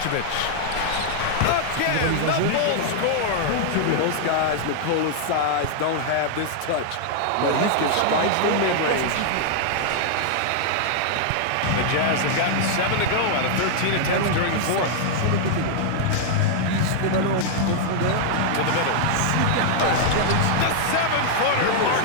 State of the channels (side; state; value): both; different; correlation -0.01